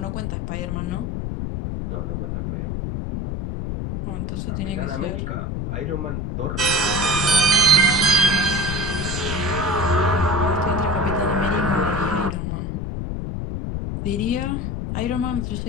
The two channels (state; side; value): noise; left; rumble, 3 dB below the sound